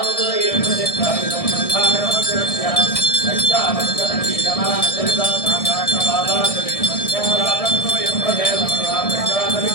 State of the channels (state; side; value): late; right; 1.6 ms